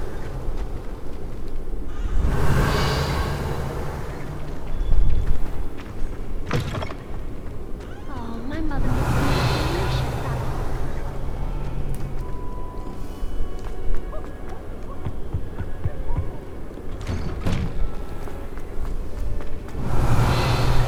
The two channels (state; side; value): identical; both; correlation 1.00